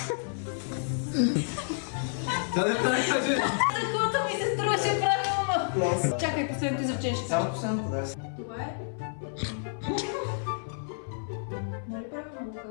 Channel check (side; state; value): right; silent; 56 dB below the other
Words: Такото ми се струваше правилно. Чакай, последното изречение ще кажа. Само последното, да. Това е... Нали правилно го